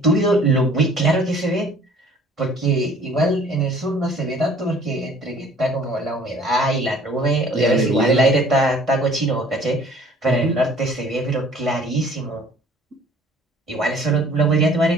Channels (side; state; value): both; normal; correlation 0.53